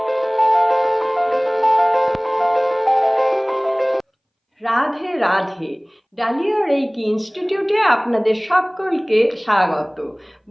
রাধে রাধে। ডালিয়া রেইকি ইনস্টিটিউটে আপনাদের সকলকে স্বাগত।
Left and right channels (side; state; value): both; identical; correlation 1.00